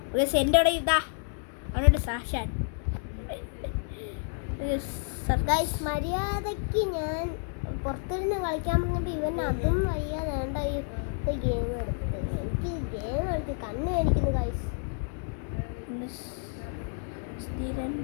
ഗൈസ്. എൻ്റെ ഇവിടെ ഇതാ അവനോട് സാക്ഷാൻ ഗൈസ്. മര്യാദയ്ക്ക് ഞാൻ പുറത്തിരുന്ന് കളിക്കാൻ പറഞ്ഞപ്പോൾ ഇവൻ അതും വയ്യാതെ വേണ്ട ഈ ഗെയിം എടുത്ത് എനിക്ക് ഗെയിം കളിച്ച് കണ്ണ് മേടിക്കുന്നു ഗൈസ്.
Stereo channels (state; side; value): silent; right; 58 dB below the other